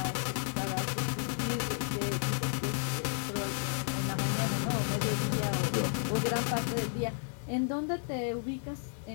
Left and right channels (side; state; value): right; silent; digital silence